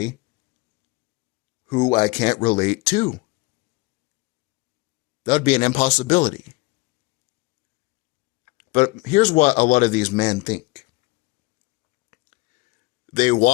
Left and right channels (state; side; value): quieter; right; 22.3 dB